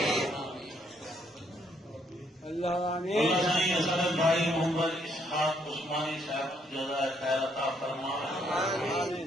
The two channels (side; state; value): both; normal; correlation 0.71